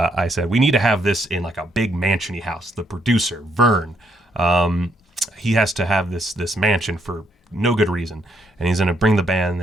said, we need to have this in like a big mansion-y house. The producer, Vern, he has to have this mansion for no good reason, and he's going to bring the band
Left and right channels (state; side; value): normal; both; correlation 0.74